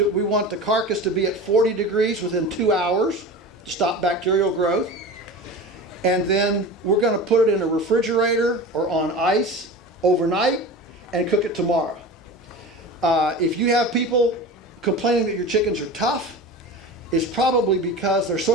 the carcass to be at 40 degrees within 2 hours to stop bacterial growth. And then we're going to put it in a refrigerator or on ice overnight and cook it tomorrow. If you have people complaining that your chickens are tough, it's probably because they're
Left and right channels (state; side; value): normal; both; correlation 0.32